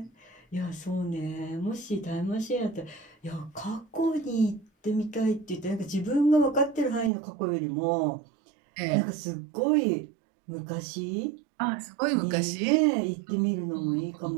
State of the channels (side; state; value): left; drops out; at 7.1 s